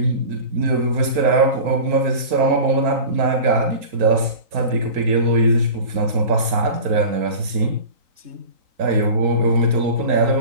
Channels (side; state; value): left; late; 4.4 ms